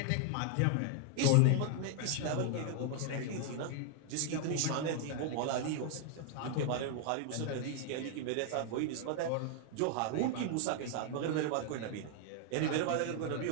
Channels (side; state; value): both; different; correlation 0.00